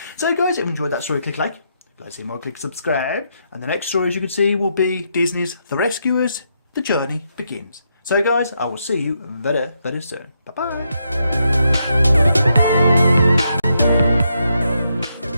So guys, if you enjoyed that story, click like. If you'd like to see more, click subscribe. And the next story, as you can see, will be Disney's The Rescuers. The journey begins. So guys, I will see you very, very soon. Bye-bye.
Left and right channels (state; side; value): inverted; both; correlation -0.80